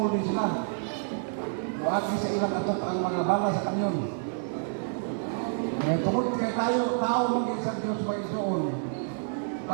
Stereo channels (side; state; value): left; silent; digital silence